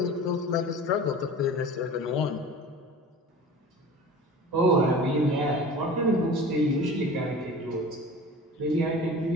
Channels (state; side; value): normal; both; correlation 0.38